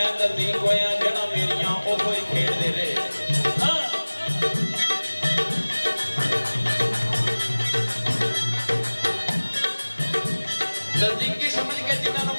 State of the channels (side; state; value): both; inverted; correlation -1.00